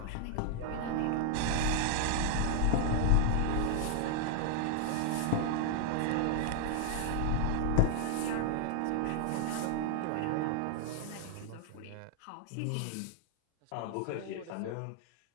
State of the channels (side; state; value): both; different; correlation 0.00